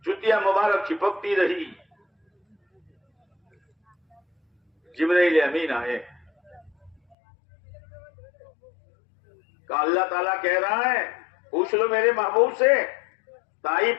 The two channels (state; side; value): drops out; right; at 7.2 s